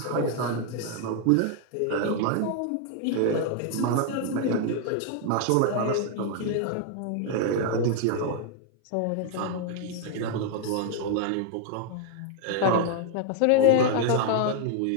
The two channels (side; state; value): both; different; correlation 0.00